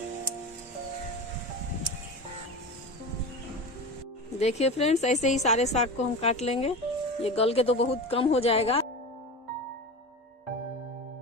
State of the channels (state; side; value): normal; both; correlation 0.27